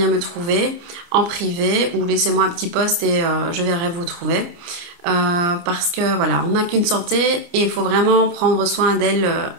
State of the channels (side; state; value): left; late; 29 ms